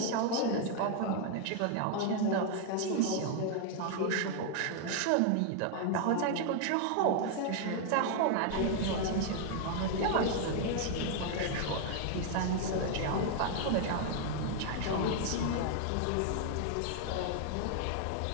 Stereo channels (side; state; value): both; different; correlation 0.00